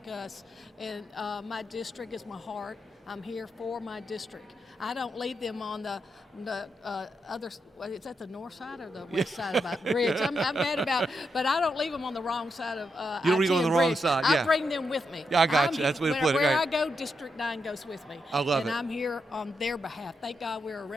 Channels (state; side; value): normal; both; correlation 0.83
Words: us. And my district is my heart. I'm here for my district. I don't leave them on the other. Is that the north side or the west side of the bridge? I'm mad about, but I don't leave them on the wrong side of. You don't leave them on the wrong bridge. side, I yeah. bring them with me. Yeah, I got you. That's the way to put it, Where right. I go, District 9 goes with me. I love and it. I'm here on their behalf. Thank God we're a